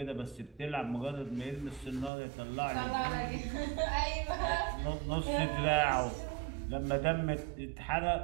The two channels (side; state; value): left; drops out; at 2.1 s